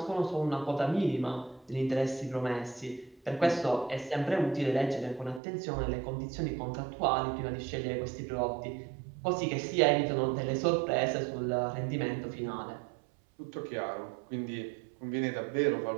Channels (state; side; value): drops out; left; at 5.4 s